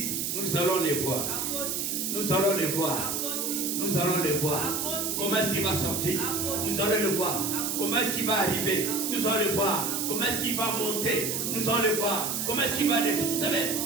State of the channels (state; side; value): noise; right; hiss, 1 dB below the sound